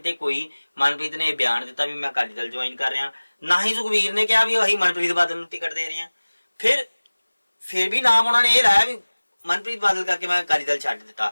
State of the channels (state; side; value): inverted; both; correlation -1.00